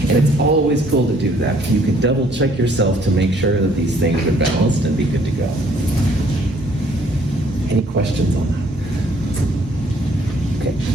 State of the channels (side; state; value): both; normal; correlation 0.62